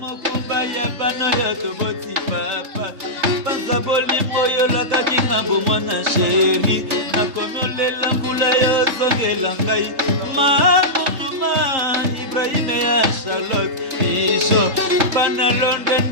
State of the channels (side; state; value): left; late; 3.8 ms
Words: baya bana yo to boti papa. Banza boli moyo la kabinga bo mwana chéri. Na kono le lambula yo zongela ngai. Ma Ibrahim ya Charlotte. Isho pana London